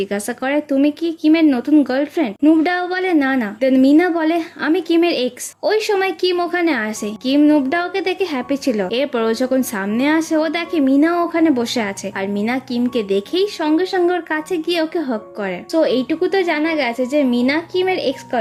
করে তুমি কি কিমের নতুন গার্লফ্রেন্ড? নুবডাও বলে না। দেন মিনা বলে আমি কিমের এক্স। ওই সময় কিম ওখানে আসে। কিম নুবডাওকে দেখে হ্যাপি ছিল। এরপর ও যখন সামনে আসে ও দেখে মিনাও ওখানে বসে আছে। আর মিনা কিমকে দেখেই সঙ্গে সঙ্গে ওর কাছে গিয়ে ওকে হক করে। তো এইটুকু তো জানা গেছে যে মিনা কিমের এক্স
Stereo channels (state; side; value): identical; both; correlation 1.00